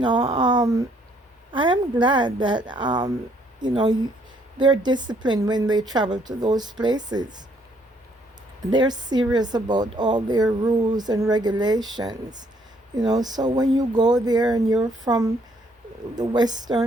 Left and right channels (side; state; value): both; normal; correlation 0.67